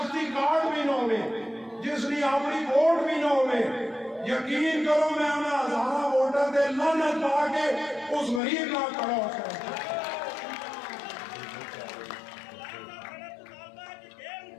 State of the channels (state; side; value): drops out; right; at 8.4 s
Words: کارڈ بھی نہ ہوئے جس نے اپنی ووٹ بھی نہ ہوئے یقین کرو میں انہیں ہزاروں ووٹر دے لعنت پا کے اس غریب نال کھڑا ہو سکتا